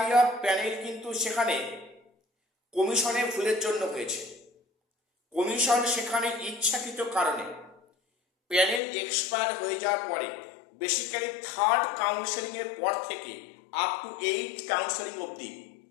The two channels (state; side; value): drops out; right; at 8.8 s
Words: অফ প্যানেল কিন্তু সেখানে কমিশনের ভুলের জন্য হয়েছে। কমিশন সেখানে ইচ্ছাকৃত কারণে প্যানেল এক্সপায়ার হয়ে যাওয়ার পরে, বেসিক্যালি 3rd কাউন্সেলিংয়ের পর থেকে আপ টু 8th কাউন্সেলিং অবধি